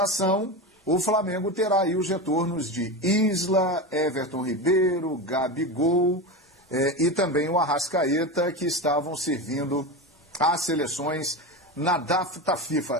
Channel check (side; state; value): both; normal; correlation 0.21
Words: o Flamengo terá aí os retornos de Isla, Everton Ribeiro, Gabigol e também o Arrascaeta, que estavam servindo às seleções na data